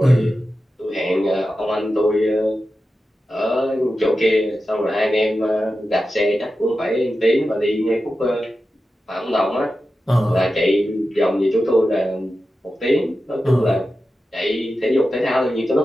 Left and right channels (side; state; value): both; normal; correlation 0.92